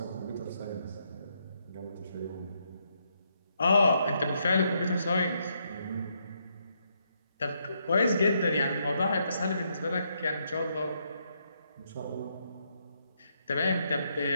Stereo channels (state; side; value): inverted; both; correlation -0.77